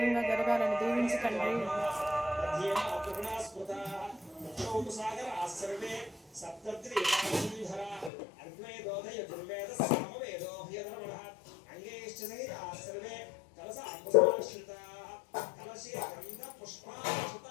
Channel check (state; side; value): drops out; right; at 8.1 s